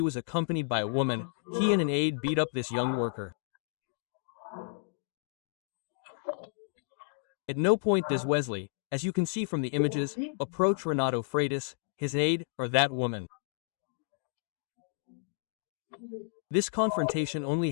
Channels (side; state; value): right; silent; digital silence